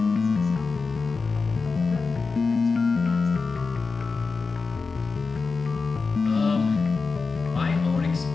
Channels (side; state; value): right; quieter; 4.4 dB